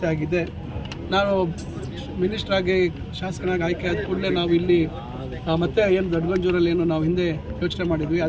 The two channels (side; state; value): both; identical; correlation 1.00